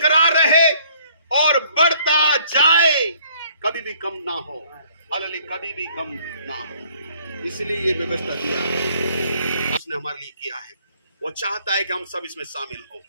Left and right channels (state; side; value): inverted; both; correlation -0.61